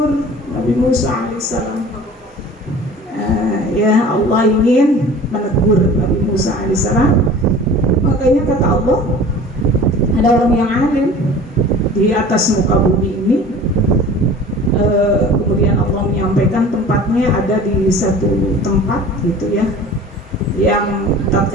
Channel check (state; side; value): normal; both; correlation 0.43